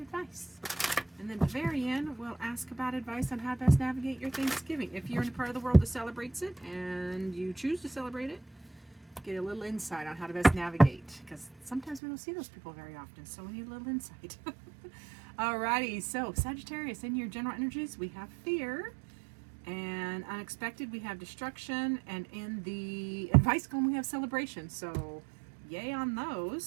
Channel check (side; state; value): left; drops out; at 12.0 s